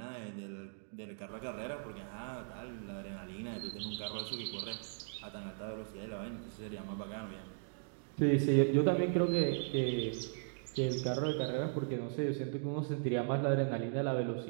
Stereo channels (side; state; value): left; silent; digital silence